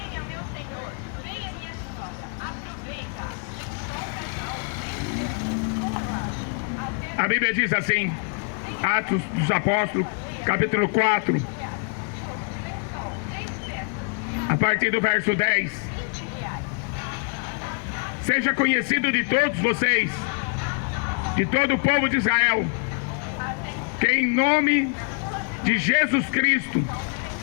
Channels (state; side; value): quieter; right; 39.5 dB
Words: A Bíblia diz assim, Atos dos Apóstolos, capítulo 4, a partir do verso 10. Seja conhecido de todos vocês, de todo o povo de Israel, que em nome de Jesus Cristo,